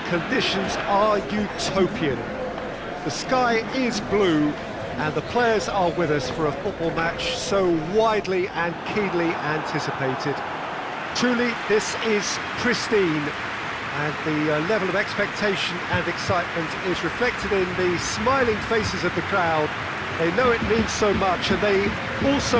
conditions are utopian. The sky is blue and the players are with us for a football match so widely and keenly anticipated. Truly, this is pristine, and the level of expectation and excitement is reflected in the smiling faces of the crowd. They know it means so much, and they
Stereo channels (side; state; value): both; identical; correlation 1.00